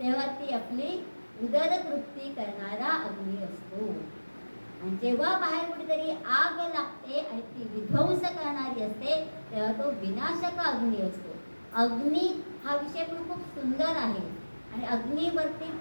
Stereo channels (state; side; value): inverted; both; correlation -1.00